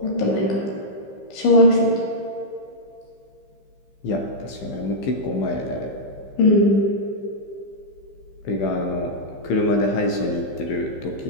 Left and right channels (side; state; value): right; late; 15 ms